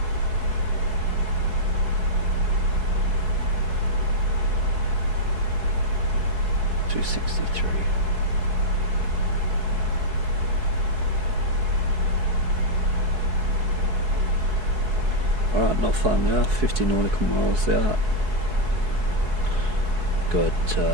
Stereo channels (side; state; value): left; late; 4.7 ms